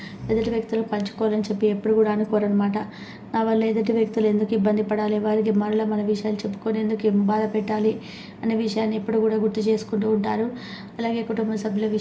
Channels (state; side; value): identical; both; correlation 1.00